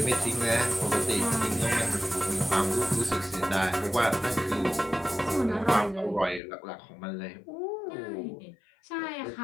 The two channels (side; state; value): right; drops out; at 6.4 s